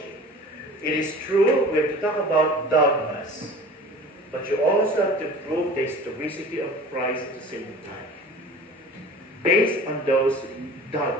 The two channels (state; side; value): normal; both; correlation 0.41